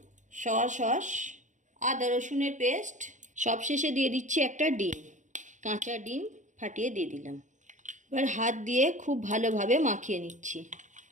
সয়া সস, আদা রসুনের পেস্ট। সবশেষে দিয়ে দিচ্ছি একটা ডিম, কাঁচা ডিম ফাটিয়ে দিয়ে দিলাম। এবার হাত দিয়ে খুব ভালোভাবে মাখিয়ে নিচ্ছি।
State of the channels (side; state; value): left; late; 0.36 ms